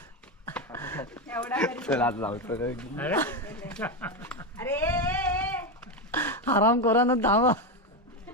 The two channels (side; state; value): both; normal; correlation 0.12